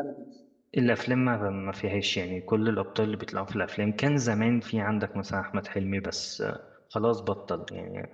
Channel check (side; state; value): both; identical; correlation 1.00